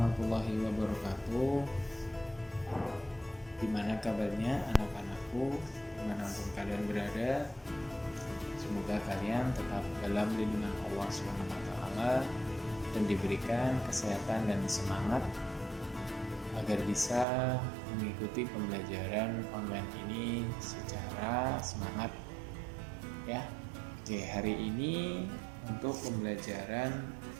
wabarakatuh. Gimana kabarnya anak-anakku, dimanapun kalian berada? Semoga kalian tetap dalam lindungan Allah SWT dan diberikan kesehatan dan semangat agar bisa mengikuti pembelajaran online ini secara semangat ya. Oke, hari ini untuk pembelajaran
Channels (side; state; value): left; drops out; at 17.2 s